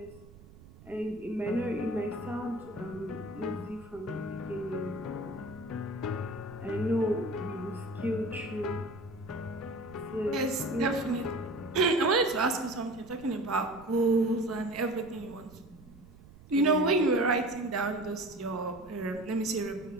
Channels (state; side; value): noise; right; rumble, 21 dB below the sound